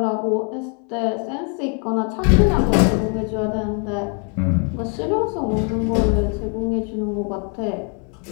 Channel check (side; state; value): right; quieter; 39.6 dB